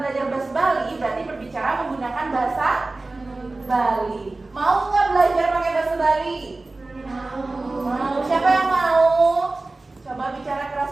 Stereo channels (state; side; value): quieter; left; 3.2 dB